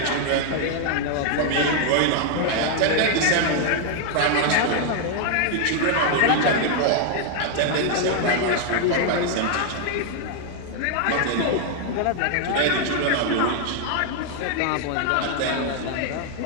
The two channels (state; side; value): different; both; correlation 0.00